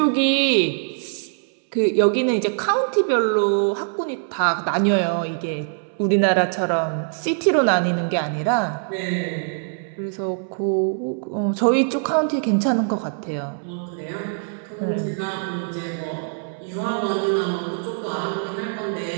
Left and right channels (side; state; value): left; silent; 62 dB below the other